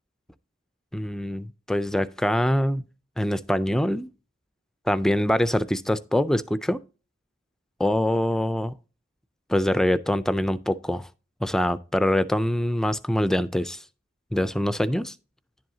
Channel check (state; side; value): normal; both; correlation 0.95